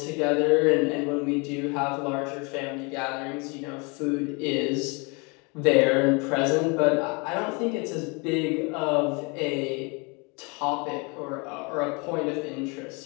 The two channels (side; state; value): right; quieter; 30.7 dB